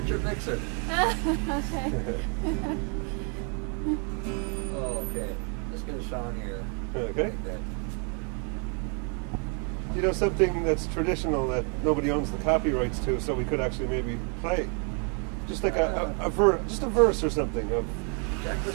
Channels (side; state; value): left; quieter; 38.3 dB